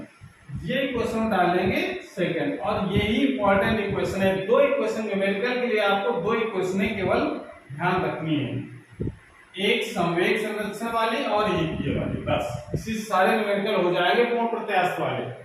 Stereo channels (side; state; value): both; identical; correlation 1.00